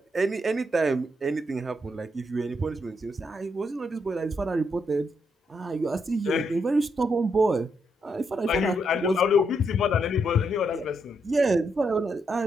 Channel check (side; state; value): both; normal; correlation 0.78